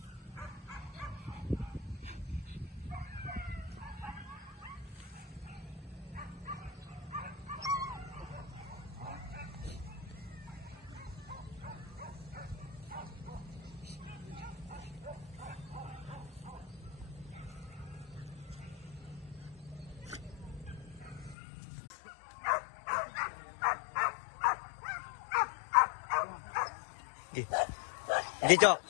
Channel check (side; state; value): right; drops out; at 21.4 s